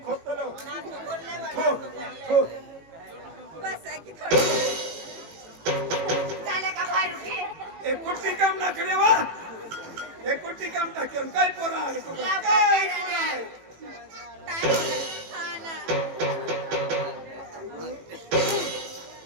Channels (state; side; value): late; left; 18 ms